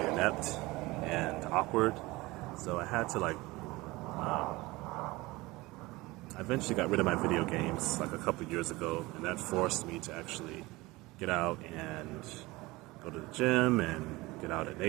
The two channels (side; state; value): left; quieter; 21.3 dB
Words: inept and awkward. So I had to I eventually got rid of my video games like a couple of years ago, and that forced me to actually get out and go to the gym and get out in